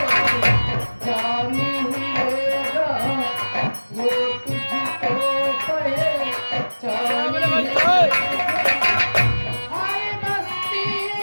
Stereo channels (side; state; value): both; inverted; correlation -1.00